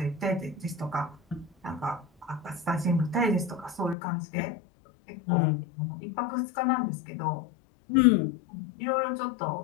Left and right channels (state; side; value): drops out; right; at 4.0 s